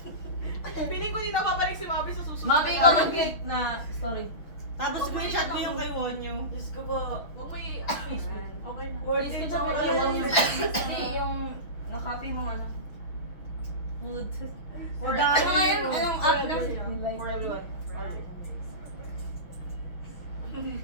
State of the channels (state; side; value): late; right; 6.2 ms